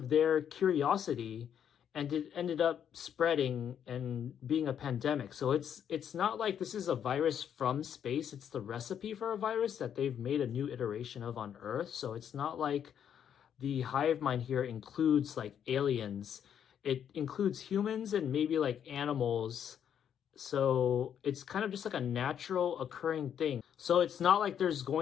their curiosity, and it ended up spreading and being a pandemic. So it's not like this is a virus from space. It's the recipe for a virus that they've made a new iteration of on Earth. So it's not like the hive mind here includes like aliens. It includes humans and maybe like animals. So it's kind of just like a natural occurring thing. So it's not like there's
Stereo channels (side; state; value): right; quieter; 8.9 dB